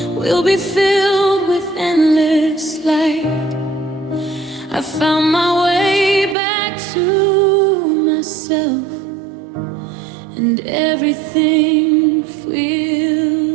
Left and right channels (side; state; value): left; drops out; at 6.4 s